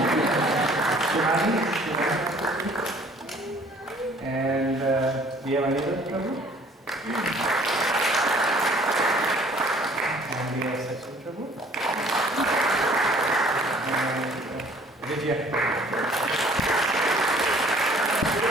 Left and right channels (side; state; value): both; normal; correlation 0.55